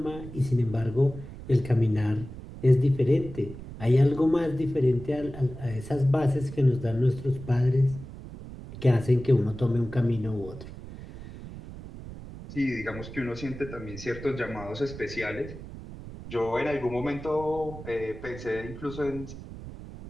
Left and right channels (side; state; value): right; noise; rumble, 13 dB below the sound